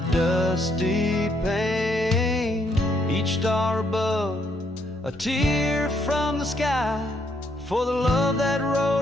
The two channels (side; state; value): both; normal; correlation 0.72